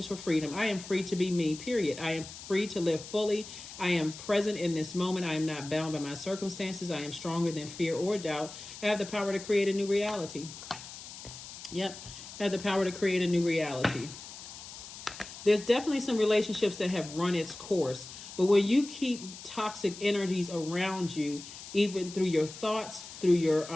for freedom. I am free to be me, period. I am free to live fully. I am present in this moment. I am not bound by my circumstances. I am stronger than fear or doubt. I have the power to create a new reality. Yep. Have the power to create a new reality. There's definitely some relationships that have run its course, but when you keep toxic energies around you, even through your thoughts, through your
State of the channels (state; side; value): noise; left; hiss, 13 dB below the sound